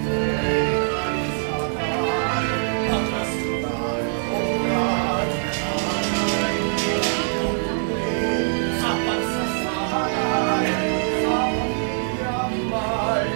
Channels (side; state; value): left; silent; 63 dB below the other